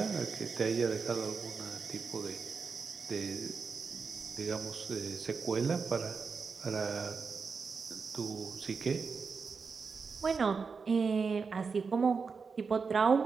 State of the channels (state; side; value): quieter; left; 5.2 dB